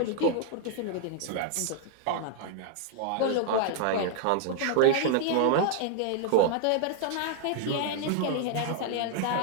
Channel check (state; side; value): different; both; correlation 0.00